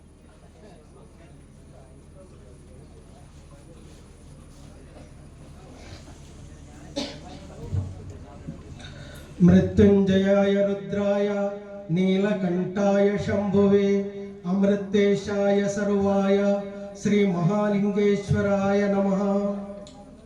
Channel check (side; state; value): both; identical; correlation 1.00